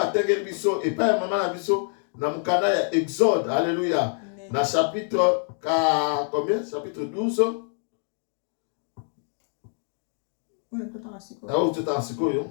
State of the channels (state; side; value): silent; right; 55 dB below the other